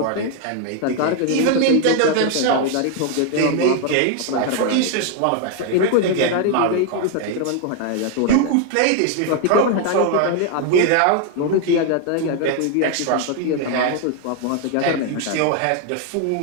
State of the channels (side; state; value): both; different; correlation 0.00